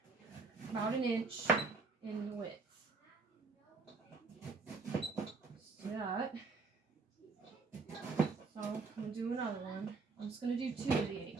about 1 inch in width. Just do that. So I'm going to do another one. I'm just going to do 2 of the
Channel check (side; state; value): left; quieter; 4.2 dB